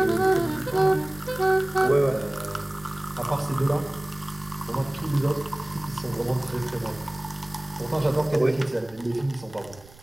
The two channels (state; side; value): noise; right; rumble, 22 dB below the sound